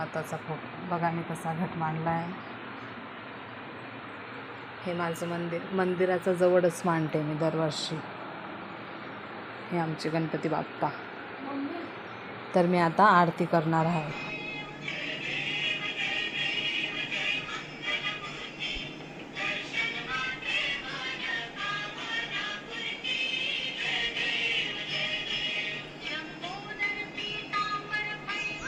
फोटो बघा, मी कसा घट मांडला आहे. हे माझं मंदिराच्या जवळच मांडते मी दरवर्षी. हे आमचे गणपती बाप्पा. तर मी आता आरती करणार आहे.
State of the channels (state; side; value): identical; both; correlation 1.00